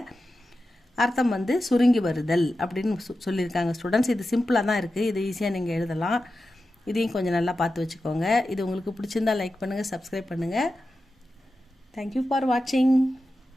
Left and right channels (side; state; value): both; normal; correlation 0.92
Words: அர்த்தம் வந்து சுருங்கி வருதல் அப்படின்னு சொல்லியிருக்காங்க ஸ்டூடெண்ட்ஸ். இது சிம்பிளாக தான் இருக்குது, இது ஈஸியாக நீங்கள் எழுதலாம். இதையும் கொஞ்சம் நல்லா பார்த்து வச்சுக்கோங்க. இது உங்களுக்கு பிடிச்சிருந்தால் லைக் பண்ணுங்கள், சப்ஸ்கிரைப் பண்ணுங்கள். தேங்க்யூ ஃபார் வாட்சிங்.